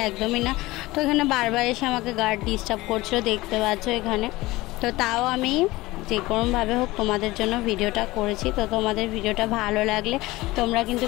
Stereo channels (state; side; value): quieter; right; 19.5 dB